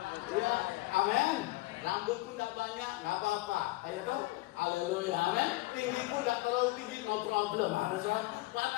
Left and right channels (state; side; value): quieter; right; 20.1 dB